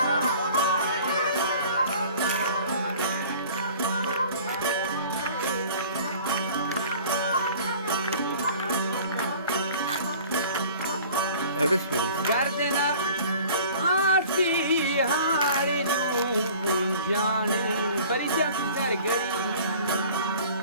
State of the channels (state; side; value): inverted; both; correlation -0.47